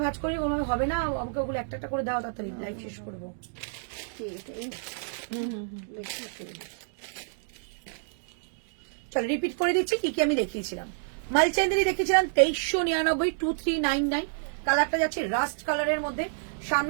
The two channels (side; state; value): left; silent; digital silence